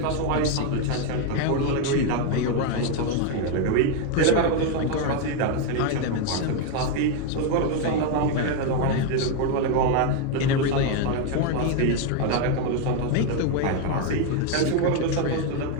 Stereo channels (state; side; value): different; both; correlation 0.01